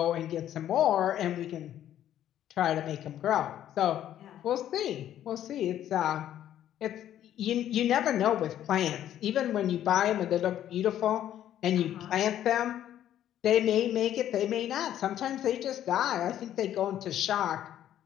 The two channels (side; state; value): right; quieter; 11.4 dB